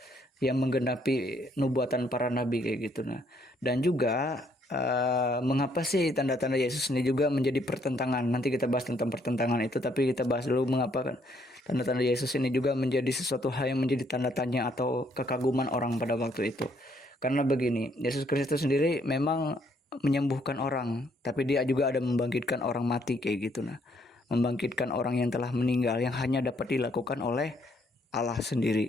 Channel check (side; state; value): both; normal; correlation 0.69